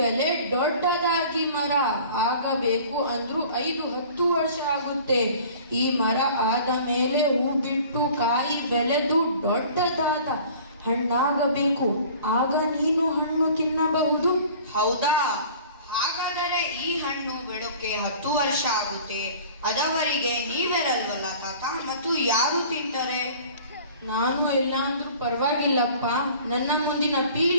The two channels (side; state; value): both; inverted; correlation -0.46